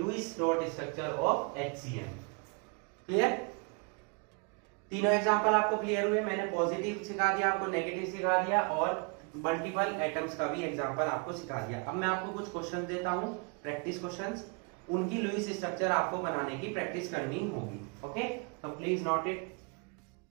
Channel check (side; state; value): left; quieter; 33.8 dB